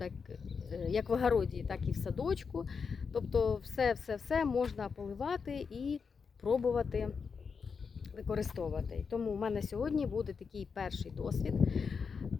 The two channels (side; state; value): right; quieter; 5.6 dB